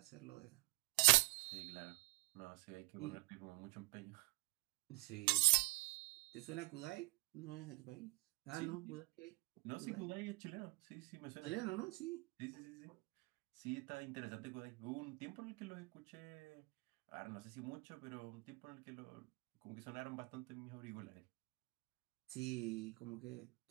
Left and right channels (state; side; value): quieter; left; 30.1 dB